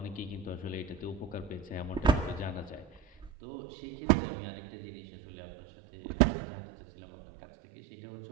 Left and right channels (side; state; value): left; drops out; at 3.3 s